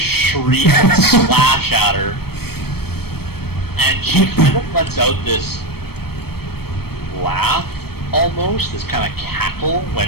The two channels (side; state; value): right; late; 0.96 ms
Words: and slash at her, and she kind of lets out this laugh, almost, this kind of cackle